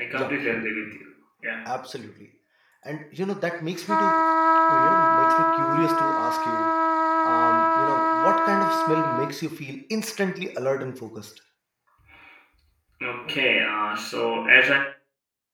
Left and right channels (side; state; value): both; identical; correlation 1.00